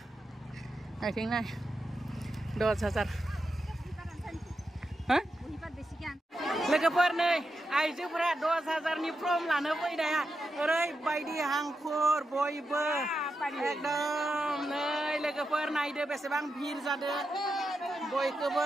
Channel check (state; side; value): normal; both; correlation 0.87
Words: आथिं नाय 10,000 लोगोफोर नै आइजोफोरा 10,000नि फर्म लानो फैनाया ओरैबायदि हांखुर बयबो एकदम नै लोगोफोर नायदो बेसेबां भिर जादो